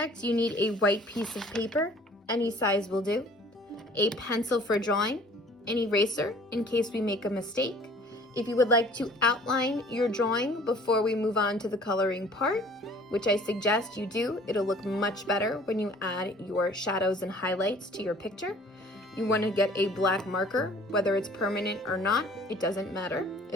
you need a white piece of paper, any size will do, a pencil for drawing, an eraser in case we make a mistake. If you would like to outline your drawing before we move on to the coloring part, which I suggest you do, it'll look much better when you add your shadows and highlights to your picture. You want to get a black marker, whether it's permanent or not, it doesn't matter.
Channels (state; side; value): normal; both; correlation 0.52